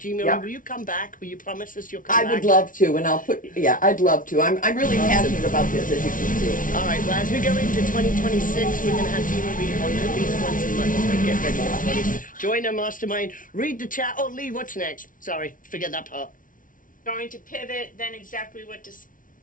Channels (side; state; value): right; late; 0.38 ms